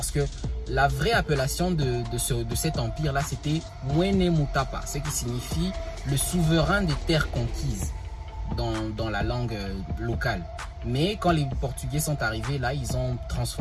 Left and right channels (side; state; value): both; identical; correlation 1.00